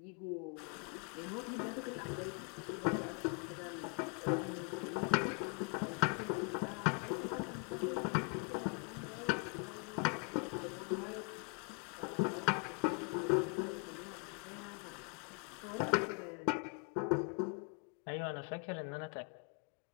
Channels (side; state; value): right; quieter; 35.6 dB